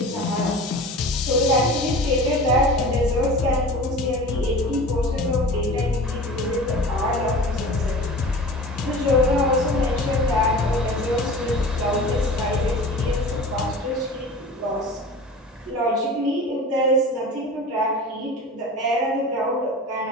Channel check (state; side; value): normal; both; correlation 0.37